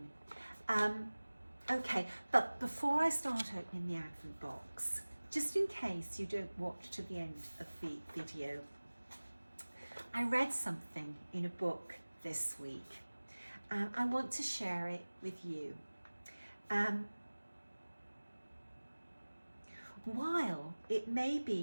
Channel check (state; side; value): inverted; both; correlation -1.00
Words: Okay, but before I start opening the Advent box, just in case you don't watch to the end of the video, I read something in a book this week. I want to share it with you. While it may